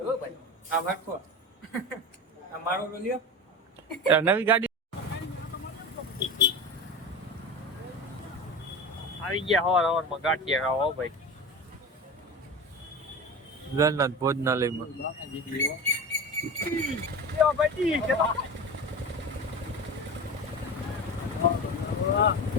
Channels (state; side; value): normal; both; correlation 0.28